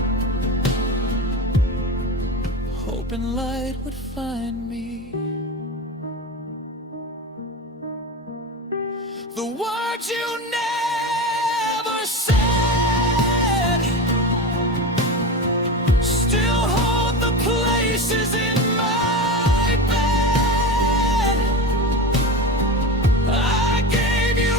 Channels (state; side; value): normal; both; correlation 0.24